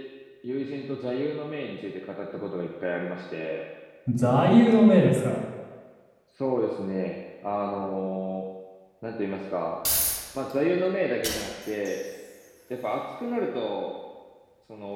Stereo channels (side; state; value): both; identical; correlation 1.00